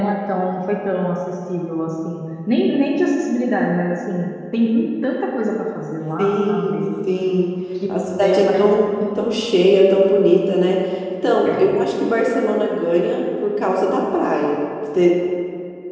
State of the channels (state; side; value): identical; both; correlation 1.00